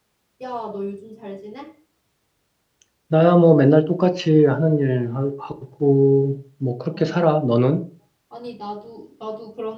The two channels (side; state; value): both; identical; correlation 1.00